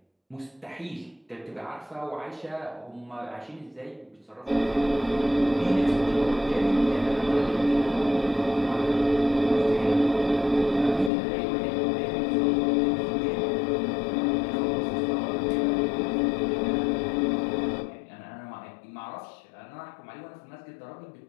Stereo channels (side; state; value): right; drops out; at 11.1 s